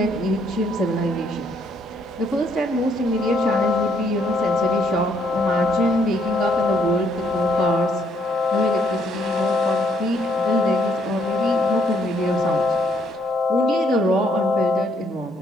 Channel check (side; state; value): both; normal; correlation 0.70